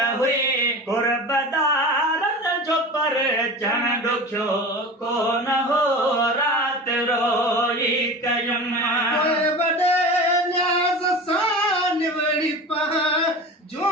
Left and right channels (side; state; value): both; normal; correlation 0.32